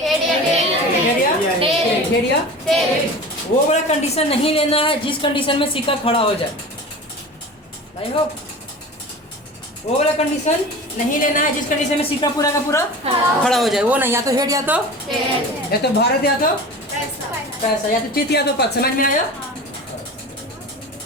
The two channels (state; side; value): normal; both; correlation 0.35